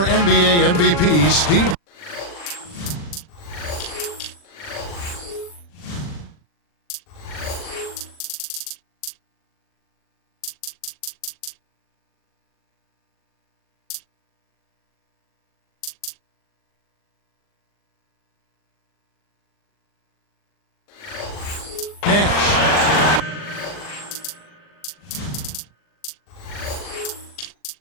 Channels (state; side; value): late; right; 40 ms